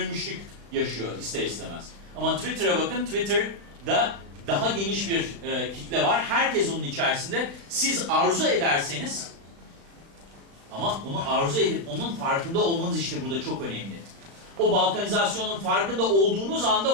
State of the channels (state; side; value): late; left; 36 ms